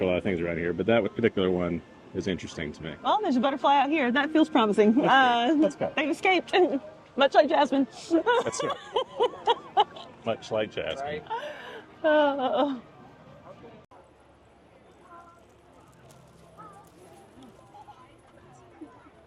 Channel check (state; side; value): identical; both; correlation 1.00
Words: a lot of things around here, but that particular one is interesting to me. Well, there's a butterfly out here. That feels promising. Let's go. They've escaped, much like Jasmine. That's right. Much like Jasmine. Uh,